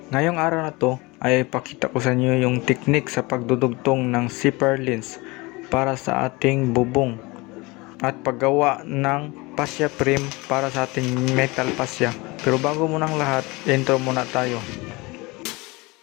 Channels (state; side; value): quieter; right; 24.2 dB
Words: Ngayong araw na to ay pakita ko sa inyo yung teknik sa pagdudugtong ng zipper lens para sa ating bubong at paggawa ng fascia frame para sa ating metal fascia. Pero bago munang lahat, intro muna tayo.